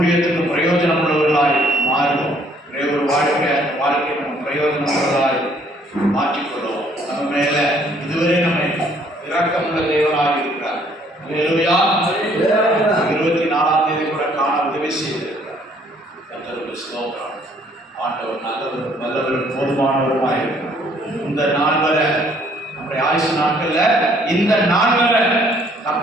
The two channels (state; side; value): normal; both; correlation 0.63